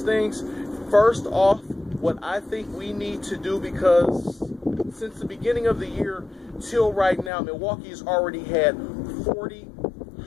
things. First off, what I think we need to do, because since the beginning of the year till right now, Milwaukee has already had 40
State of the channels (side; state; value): right; drops out; at 7.3 s